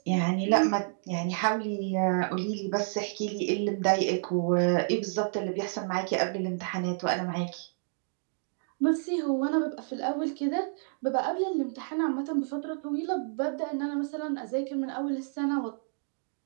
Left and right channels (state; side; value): silent; left; digital silence